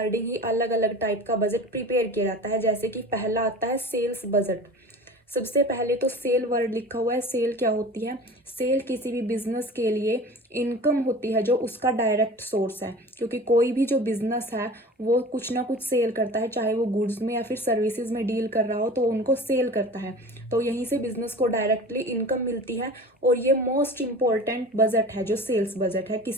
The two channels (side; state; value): both; normal; correlation 0.38